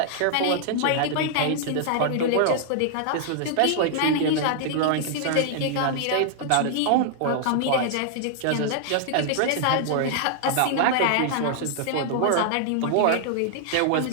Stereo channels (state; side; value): different; both; correlation -0.01